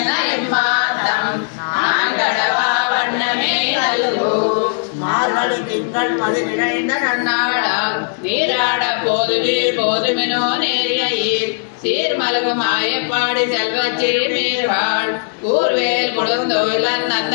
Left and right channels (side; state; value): right; silent; digital silence